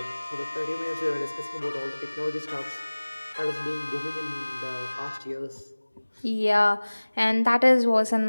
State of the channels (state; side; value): inverted; both; correlation -1.00